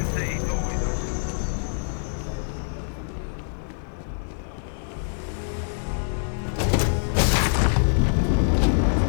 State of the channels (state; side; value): silent; right; 62 dB below the other